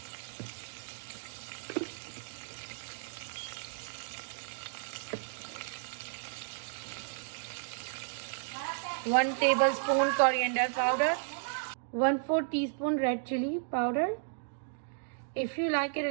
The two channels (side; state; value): left; silent; digital silence